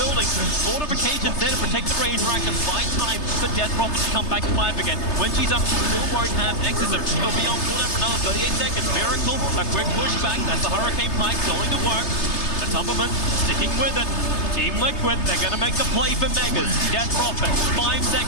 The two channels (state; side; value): late; right; 3.3 ms